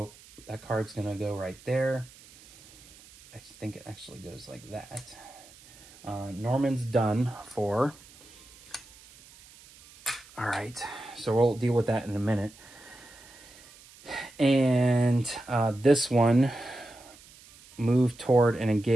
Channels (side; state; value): right; noise; hiss, 23 dB below the sound